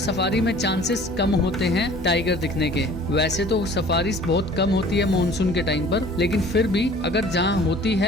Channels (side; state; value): both; normal; correlation 0.49